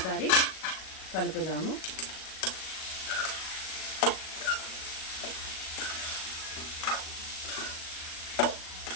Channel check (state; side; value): late; right; 37 ms